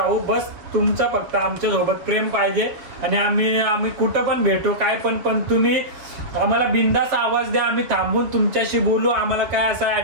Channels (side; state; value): left; late; 7.1 ms